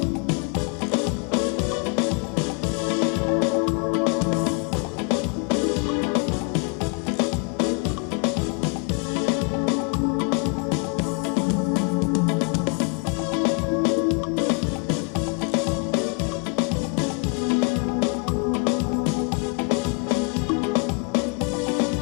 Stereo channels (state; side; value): quieter; right; 33.8 dB